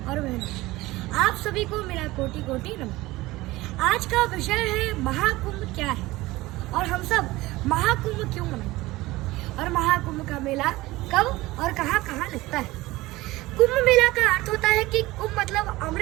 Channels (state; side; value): quieter; left; 19.2 dB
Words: बहनों, आप सभी को मेरा कोटि कोटि नमन। आज का विषय है महाकुंभ क्या है और हम सब महाकुंभ क्यों मनाते और महाकुंभ का मेला कब और कहाँ कहाँ लगता है। कुंभ मेला का अर्थ होता है कि कुंभ मतलब